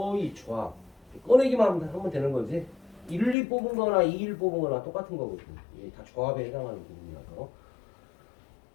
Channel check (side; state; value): right; drops out; at 3.4 s